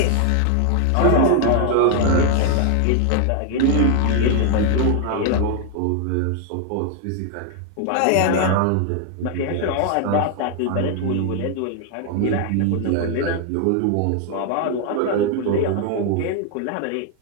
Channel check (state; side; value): different; both; correlation 0.00